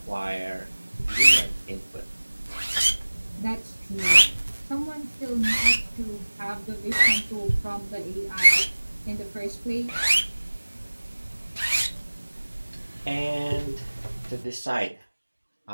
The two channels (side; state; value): both; inverted; correlation -1.00